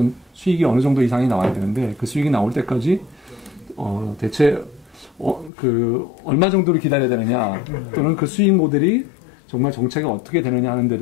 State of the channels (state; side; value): drops out; right; at 5.5 s